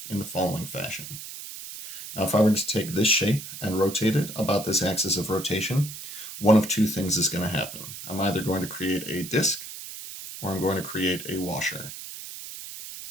in the following fashion. Now, if I were to take this shape and rotate it about this axis of rotation, one of two things is going to happen. I'm either going to create a disk or I'm going to create a washer,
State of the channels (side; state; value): right; noise; hiss, 11 dB below the sound